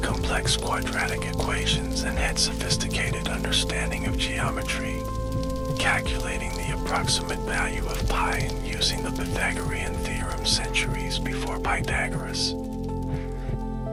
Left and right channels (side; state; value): both; identical; correlation 1.00